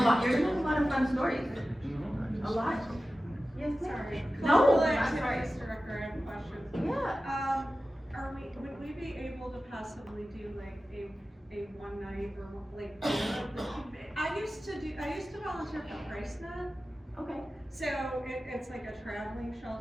lot. You're gonna have a lot of fun stories. A lot. Yes, Sorry. No, Cultural I'm sorry. activities director, I have questions. Yeah. Would we be able to possibly do like a one night or like, I used to volunteer for PriceNet. Okay. So it's like a traveling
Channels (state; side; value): normal; both; correlation 0.95